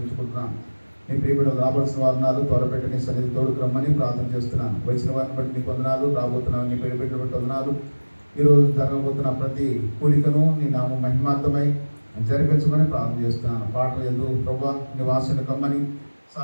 నీ ప్రియబిడ్డలు రావాల్సిన వారు త్వరపెట్టి నీ సన్నిధి తోడుకు రమ్మని ప్రార్థన చేస్తున్నాను. వచ్చిన వారిని బట్టి నీకు వందనాలు, రాబోతున్నాను నీ ప్రియబిడ్డలు బట్టి వందనాలు. ఈరోజు జరగబోతున్న ప్రతి కూడికను నీ నామం మహిమార్థమై జరిపించమని ప్రార్థన చేస్తున్నాను. పాటలు ఎందుకు ప్రభా నీ వాసన కమ్మని,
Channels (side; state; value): both; inverted; correlation -1.00